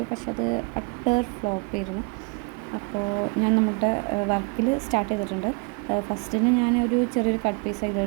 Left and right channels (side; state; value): left; quieter; 32.1 dB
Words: പക്ഷെ അത് അട്ടർ ഫ്ലോപ്പ് ആയിരുന്നു. അപ്പോൾ ഞാൻ നമ്മുടെ വർക്കിൽ സ്റ്റാർട്ട് ചെയ്തിട്ടുണ്ട്. ഫസ്റ്റിന് ഞാനൊരു ചെറിയൊരു കട്ട് പീസ്